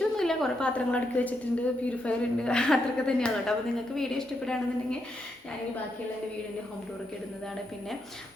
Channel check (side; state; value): both; normal; correlation 0.81